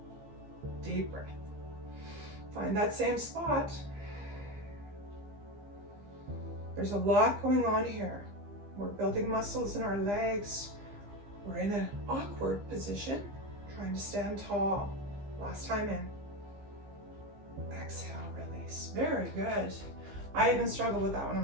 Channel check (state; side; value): late; left; 15 ms